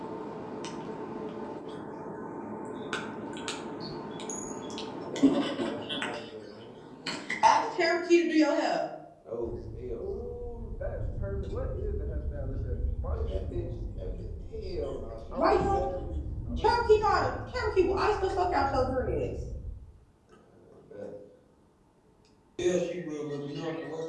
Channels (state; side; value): identical; both; correlation 1.00